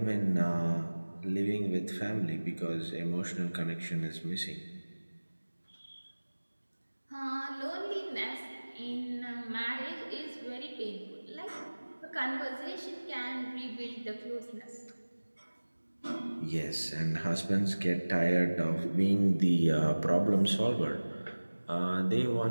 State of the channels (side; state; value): both; inverted; correlation -1.00